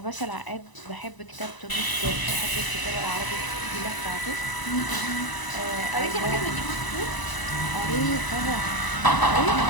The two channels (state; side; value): late; right; 1.0 ms